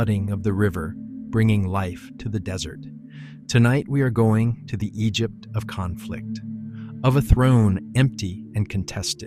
of the river bringing life to the desert. Tonight we are going to the Egypt of conflict, of a throne empty and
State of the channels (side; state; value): both; identical; correlation 1.00